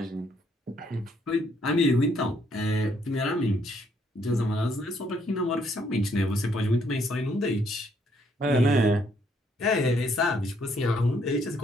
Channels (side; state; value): both; normal; correlation 0.70